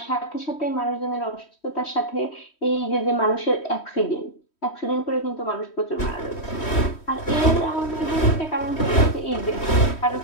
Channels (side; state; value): right; late; 3.1 ms